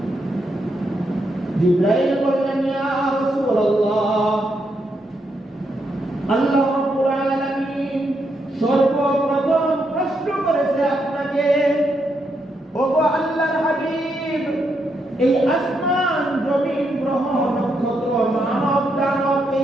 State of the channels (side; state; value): both; normal; correlation 0.80